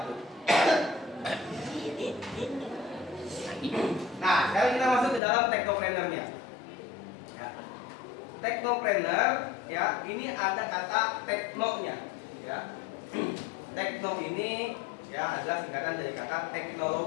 Nah, sekarang kita masuk ke dalam technopreneur-nya. Ya. Technopreneur, ya, ini ada kata teknonya, ya. Tekno ini ya adalah singkatan dari kata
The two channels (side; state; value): right; drops out; at 5.2 s